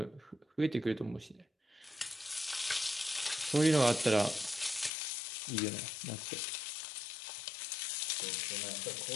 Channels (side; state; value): right; drops out; at 4.9 s